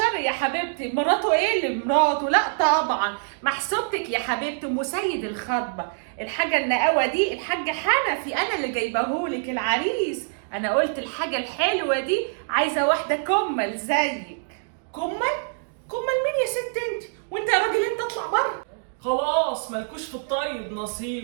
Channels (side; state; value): left; silent; digital silence